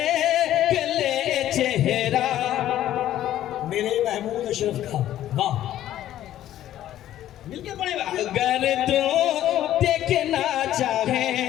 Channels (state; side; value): quieter; right; 12.6 dB